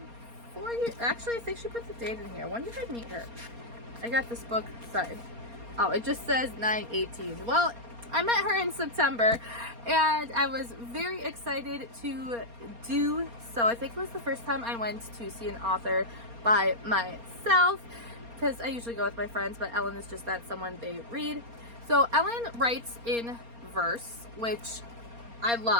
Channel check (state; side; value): late; left; 4.3 ms